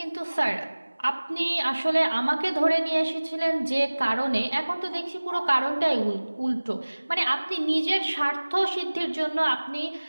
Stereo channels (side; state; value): both; inverted; correlation -1.00